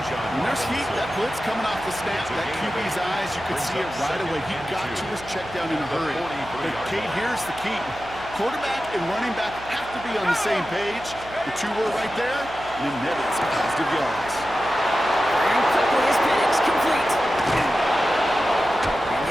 When there's heat, that blitz coming off the snap, that QB's eyes, you could see it right away. He got to his check down in a hurry. But Kate, here's the key. Quarterback and running back have to be on the same page. The 2 were right there, and it netted some positive yards. And quickly is Penix complete. And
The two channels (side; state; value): right; noise; hum, 17 dB below the sound